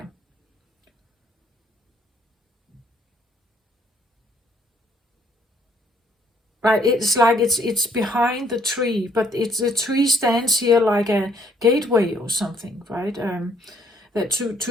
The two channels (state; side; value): normal; both; correlation 0.66